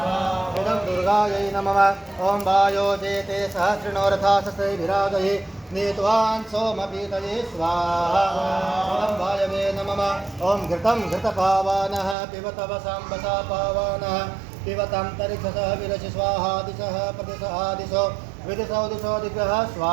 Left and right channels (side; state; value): left; drops out; at 12.2 s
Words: इदं दुर्गायै नमः ओम वायो जेते सहस्रनोरथा सस्ते विराजये नीतवान् सोमपीतये स्वाहा ओम वायवे नमः ओम घृतं घृतपावानः पिबत वसाम्बसा पावानः पिबतं तरिक्षसः विरसि स्वाहा दिशः प्रतिशः दिशो विदिशो दिशो दिग्गः